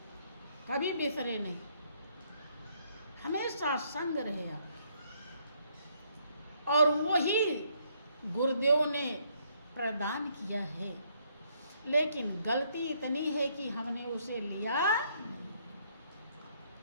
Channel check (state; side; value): inverted; both; correlation -0.70